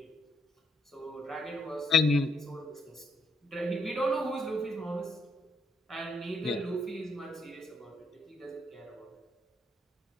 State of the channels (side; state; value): both; normal; correlation 0.74